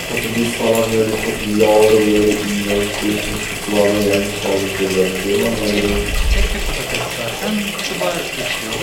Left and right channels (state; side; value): identical; both; correlation 1.00